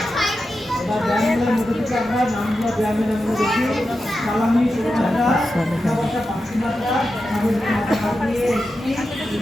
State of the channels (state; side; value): normal; both; correlation 0.90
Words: এবার ব্যায়ামগুলোর মধ্যে থেকে আমরা নামগুলো ব্যায়ামের নামগুলো দেখি। সালামি, শুভযাত্রা, উঠাবসা, পাশ্চিমাত্রা, সামুদ্রিক মাথা কাটিয়ে একটি,